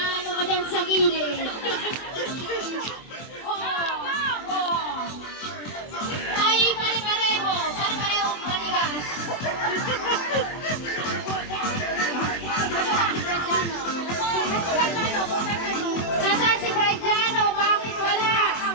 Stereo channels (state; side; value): late; right; 24 ms